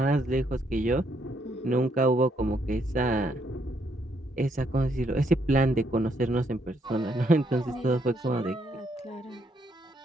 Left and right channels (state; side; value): normal; both; correlation 0.73